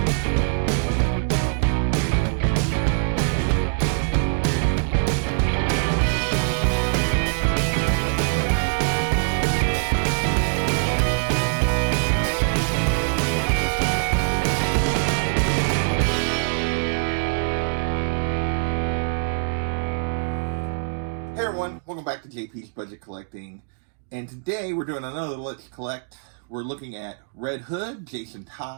Hey everyone, welcome back to JP's Budget Collecting, and today we're doing another Let's Collect. We're looking at Red Hood, Jason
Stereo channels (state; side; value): silent; left; digital silence